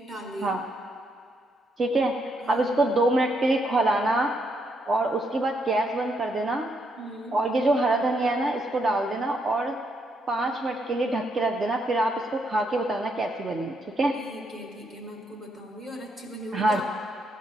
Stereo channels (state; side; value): normal; both; correlation 0.76